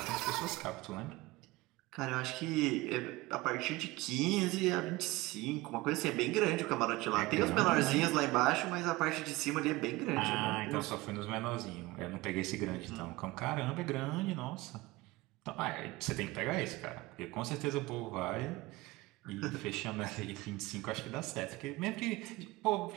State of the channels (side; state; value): left; quieter; 20.3 dB